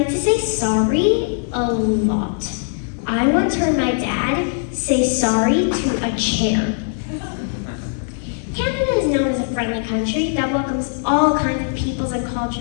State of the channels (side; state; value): right; silent; 64 dB below the other